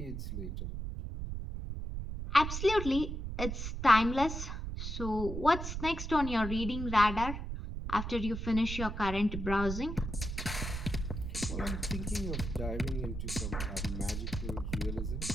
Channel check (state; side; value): noise; right; rumble, 5 dB below the sound